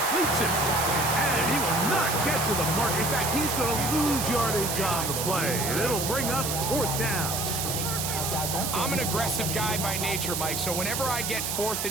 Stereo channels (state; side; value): noise; right; hiss, 2 dB below the sound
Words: it. And he will not get to the mark. In fact, he's going to lose yardage on the play. And it'll bring up 4th down. I'm an aggressive guy by nature, Mike, so whenever I get 4th